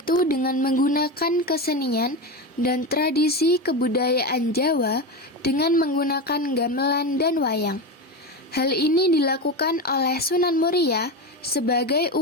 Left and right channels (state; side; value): normal; both; correlation 0.19